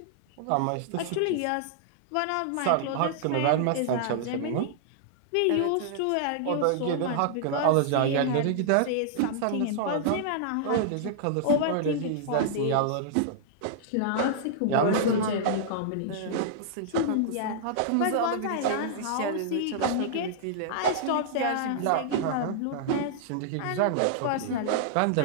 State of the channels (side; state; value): both; different; correlation -0.01